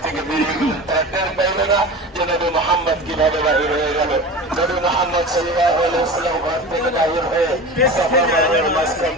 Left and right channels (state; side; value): normal; both; correlation 0.32